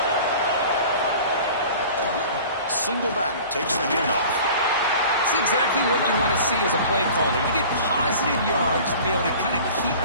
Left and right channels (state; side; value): inverted; both; correlation -0.42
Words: Single back takes the handoff. That's exactly what you want to see as a play caller. You get positive yards to be able to kind of keep